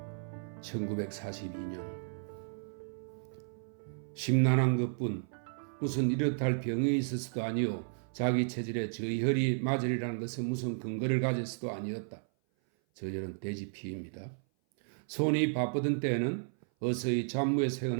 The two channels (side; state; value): left; silent; 55 dB below the other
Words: 1942년 심란한 것뿐 무슨 이렇다 병이 있어서도 아니요 자기 체질에 저혈이 맞으리라는 것은 무슨 근거를 가졌어도 아니었다. 저혈은 돼지피입니다. 손이 바쁘던 때에는 어서히 잡무에